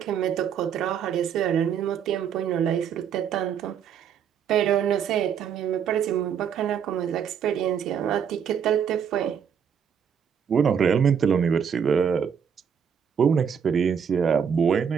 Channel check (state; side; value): quieter; left; 7.6 dB